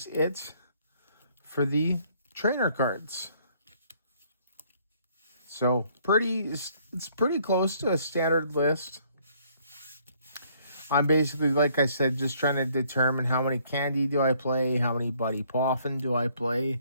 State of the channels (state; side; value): inverted; both; correlation -0.64